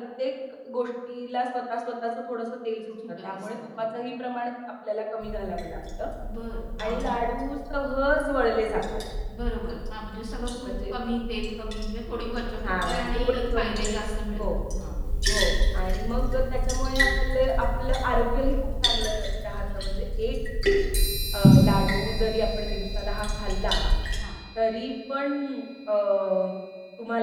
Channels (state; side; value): identical; both; correlation 1.00